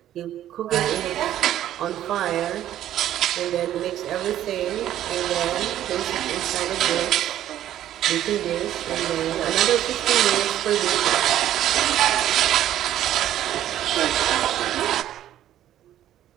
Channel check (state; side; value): quieter; left; 12.1 dB